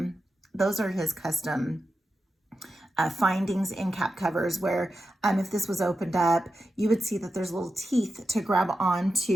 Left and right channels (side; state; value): both; normal; correlation 0.90